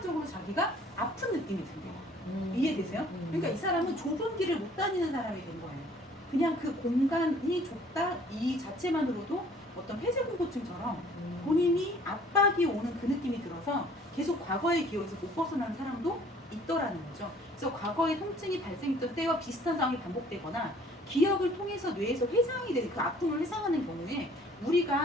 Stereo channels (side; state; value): both; normal; correlation 0.55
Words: 자기가 아픈 느낌이 들어요. 이해되세요? 그러니까 이 사람은 좁은 길을 못 다니는 사람이 된 거예요. 그냥 그 공간이 좁다 이 자체만으로도 어떤 폐쇄공포증처럼 본인이 압박이 오는 그 느낌이 들어서 계속 과거의 기억에서 못 벗어나는 사람도 있더라는 거죠. 그래서 과거의 통증이 발생했던 때와 비슷한 상황이 반복되거나 기억을 통해서 뇌에서 회상이 되는 그 아픔을 회상하는 경우에